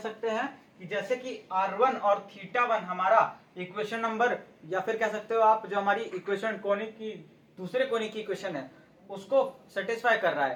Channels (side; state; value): both; identical; correlation 1.00